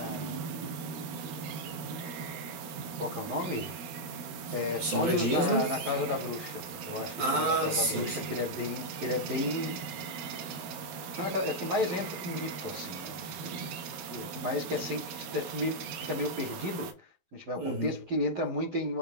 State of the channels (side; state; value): left; late; 12 ms